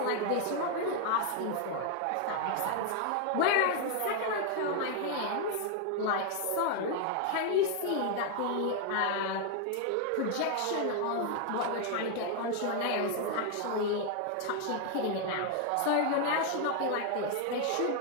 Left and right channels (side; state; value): both; different; correlation 0.00